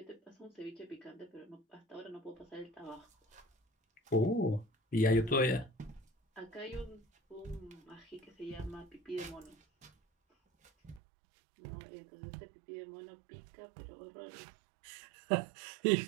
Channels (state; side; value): drops out; left; at 11.0 s